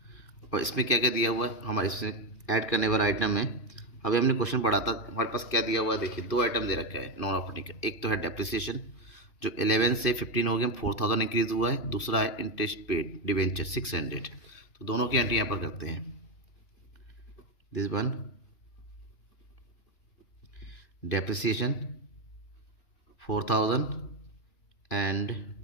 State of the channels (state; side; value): late; right; 2.5 ms